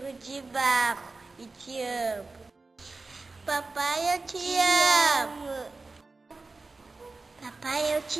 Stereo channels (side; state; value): left; quieter; 3.7 dB